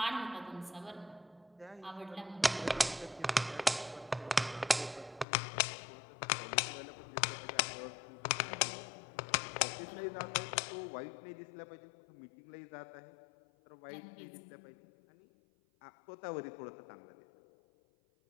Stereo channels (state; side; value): drops out; right; at 5.2 s